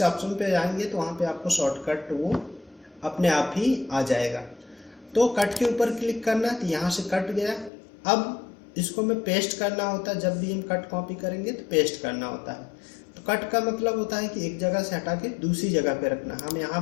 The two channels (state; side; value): drops out; right; at 7.7 s